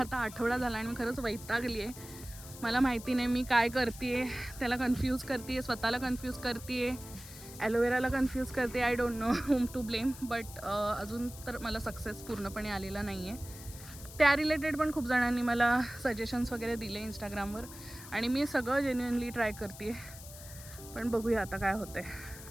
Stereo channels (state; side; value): noise; left; hiss, 15 dB below the sound